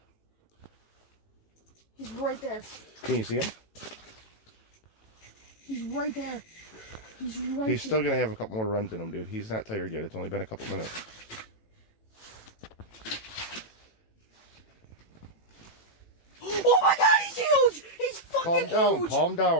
He's right there. Can you see him? He's right there. He's right He's still going to have a couple more runs in him, dude. He's not tired yet. It's only been a couple minutes. Oh my god, he's huge! He's fucking Calm huge! down, calm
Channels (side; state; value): right; late; 18 ms